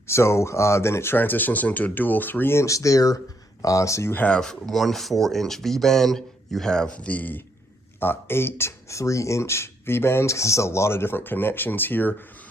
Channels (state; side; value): normal; both; correlation 0.73